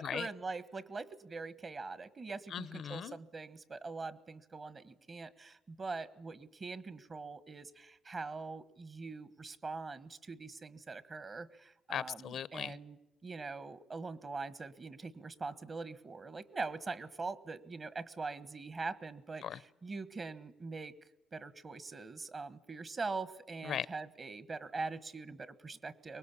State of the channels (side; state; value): both; normal; correlation 0.85